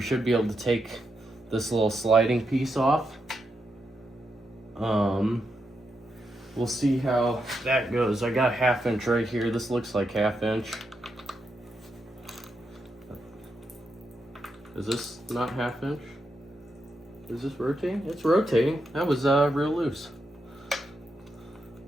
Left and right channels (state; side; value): normal; both; correlation 0.84